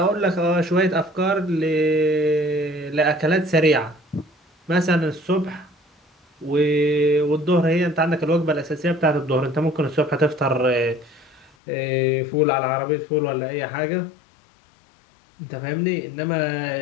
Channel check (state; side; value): drops out; right; at 11.6 s